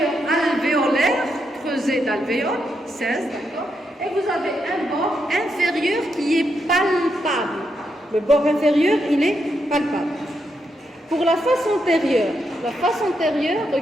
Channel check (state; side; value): normal; both; correlation 0.82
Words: alvéolaire, creusé d'alvéole, 16, d'accord? Et vous avez un bord inférieur qui est palpable. Le bord inférieur, il est palpable. Pour la face antérieure,